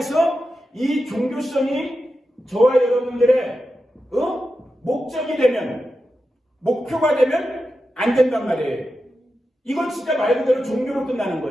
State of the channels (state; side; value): normal; both; correlation 0.90